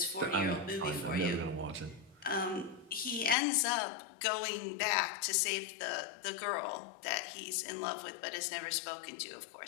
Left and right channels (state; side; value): drops out; right; at 3.4 s